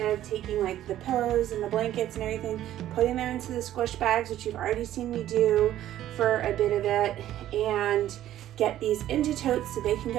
taking like the pillows and the blankets and everything, putting them into the squish bags, which you've already seen me do for a bit of it, and get these into totes so they can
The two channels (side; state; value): left; quieter; 12.7 dB